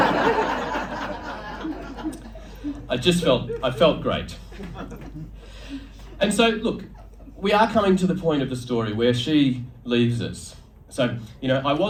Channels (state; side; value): identical; both; correlation 1.00